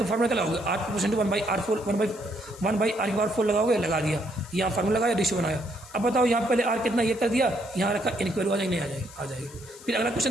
फॉर्मूला क्या लगाओगे, r proportion to 1/r4 1/r4 लगाओगे, लगा दिया, यहाँ फॉर्मूला लगाया, रेशियो बनाया। अब बताओ यहाँ पहले r कितना ये कर दिया, यहाँ रखा, n की वैल्यू आ जाएगी, नहीं आ जाएगी, आ जाएगी। फिर अगला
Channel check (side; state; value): left; noise; hiss, 20 dB below the sound